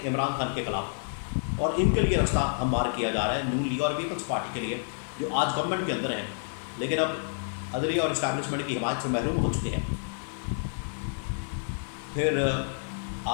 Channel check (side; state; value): right; silent; digital silence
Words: عمران خان کے خلاف، اور ان کے لیے راستہ ہموار کیا جا رہا ہے نون لیگ اور پیپلز پارٹی کے لیے جو آج گورنمنٹ کے اندر ہیں لیکن اب عدلیہ اور اسٹیبلشمنٹ کی حمایت سے محروم ہو چکے ہیں. پھر